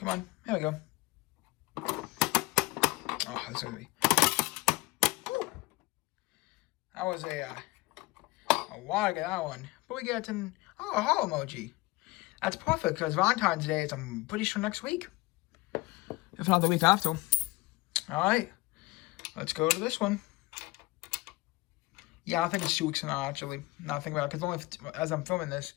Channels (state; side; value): quieter; right; 21.9 dB